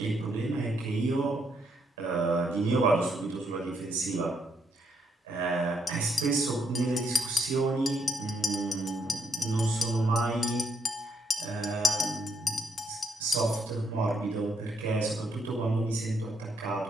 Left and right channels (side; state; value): both; normal; correlation 0.75